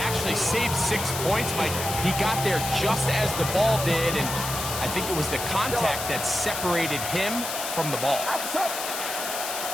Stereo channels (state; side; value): noise; left; hiss, 5 dB below the sound